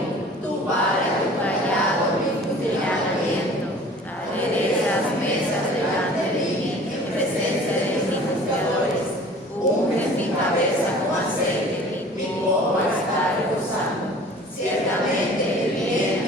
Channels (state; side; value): normal; both; correlation 0.46